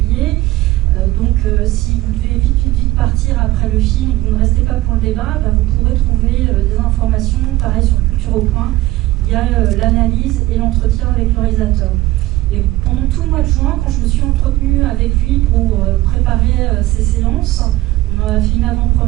Donc si vous devez vite partir après le film et que vous ne restez pas pour le débat, vous pourrez trouver des informations, pareil sur Culture au Point. Il y a l'analyse et l'entretien avec le réalisateur. Et pendant tout le mois de juin, quand je me suis entretenue avec lui pour préparer ces séances, on a fait une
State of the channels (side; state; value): left; quieter; 17.5 dB